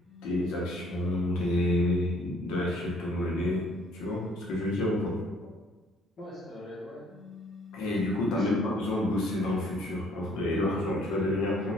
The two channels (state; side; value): normal; both; correlation 0.61